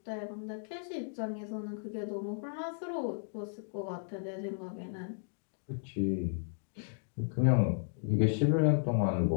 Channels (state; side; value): silent; right; digital silence